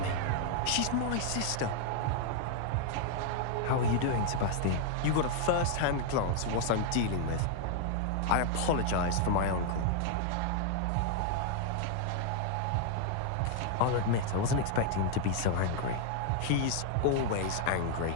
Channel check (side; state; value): both; different; correlation 0.00